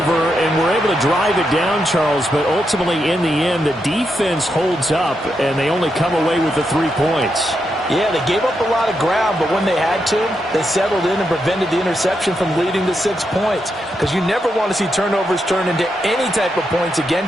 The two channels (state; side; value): normal; both; correlation 0.83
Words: and were able to drive it down, Charles, but ultimately in the end, the defense holds up, and they only come away with the 3 points. Yeah, they gave up a lot of ground, but when they had to, they settled in and prevented the interception from leading to 6 points. Because you never want to see turnovers turn into any type of points